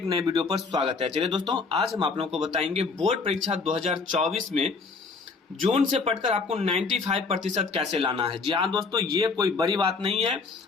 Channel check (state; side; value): quieter; right; 4.5 dB